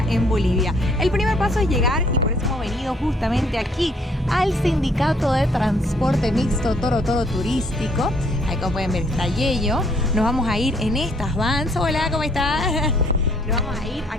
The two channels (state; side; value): normal; both; correlation 0.64